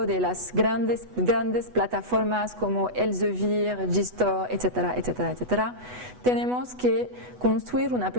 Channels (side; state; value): left; late; 8.1 ms